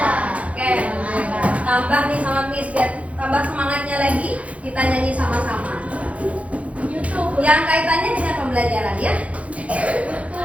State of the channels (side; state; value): left; late; 0.065 ms